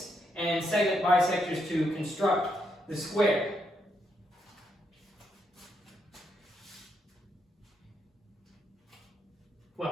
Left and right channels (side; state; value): both; normal; correlation 0.79